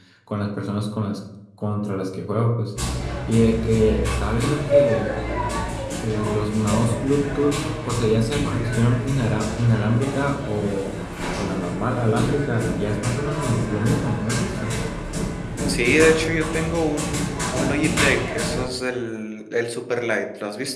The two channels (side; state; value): both; identical; correlation 1.00